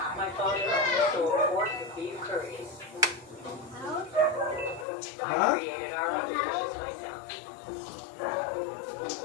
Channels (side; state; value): right; drops out; at 4.9 s